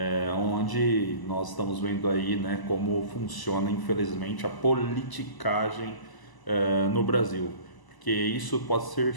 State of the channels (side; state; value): right; late; 1.0 ms